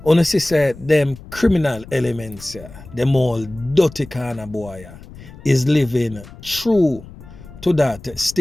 honestly said them criminal elements, them all dirty kind of boy, is living true to that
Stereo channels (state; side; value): noise; left; rumble, 18 dB below the sound